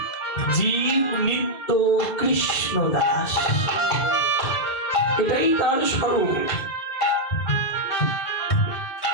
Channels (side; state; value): right; late; 2.2 ms